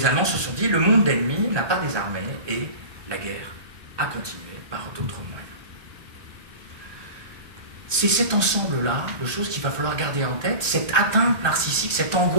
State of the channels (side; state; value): left; late; 1.2 ms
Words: Allemands se sont dit, le monde d'ennemis n'a pas désarmé, et la guerre a continué par d'autres moyens. C'est cet ensemble-là de choses qu'il va falloir garder en tête, cette atteinte narcissique, cette